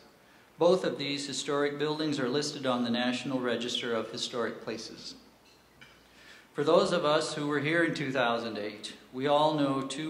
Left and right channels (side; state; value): both; identical; correlation 1.00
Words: Both of these historic buildings are listed on the National Register of Historic Places. For those of us who were here in 2008, we all know